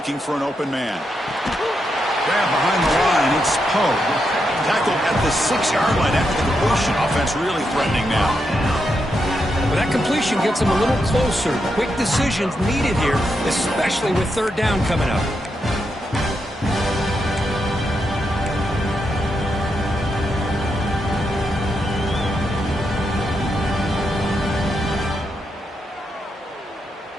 for an open man. Grab behind the line, it's Poe. Tackled at the 6-yard line after the completion. Offense really threatening now. Well, that completion gets them a little closer. Quick decisions needed here, especially with third down coming up.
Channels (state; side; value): normal; both; correlation 0.83